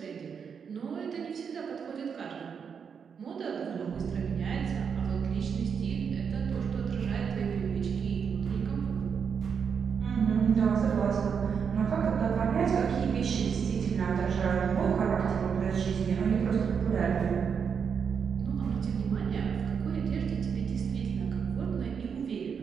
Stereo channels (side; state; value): left; quieter; 6.7 dB